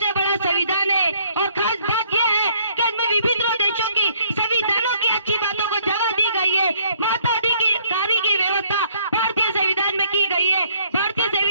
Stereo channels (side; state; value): both; inverted; correlation -0.64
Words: बड़ा संविधान है। और खास बात यह है कि इसमें विभिन्न देशों की संविधानों की अच्छी बातों को जगह दी गई है। मताधिकारी की व्यवस्था भारतीय संविधान में की गई है। भारतीय